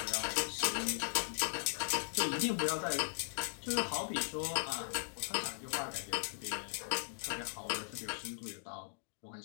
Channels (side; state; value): right; silent; digital silence